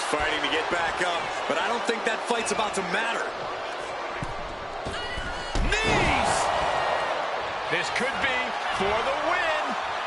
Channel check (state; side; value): identical; both; correlation 1.00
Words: fighting to get back up, but I don't think that fight's about to matter. Knees! This could be for the win.